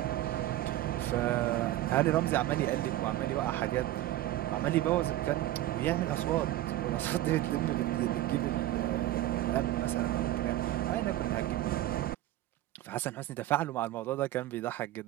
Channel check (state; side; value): quieter; left; 14.7 dB